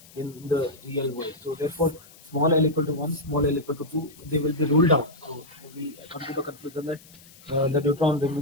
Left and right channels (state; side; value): noise; left; hiss, 23 dB below the sound